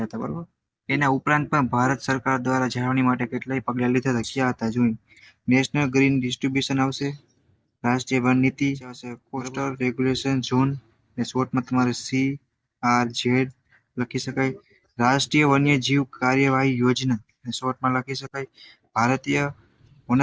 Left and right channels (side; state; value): both; identical; correlation 1.00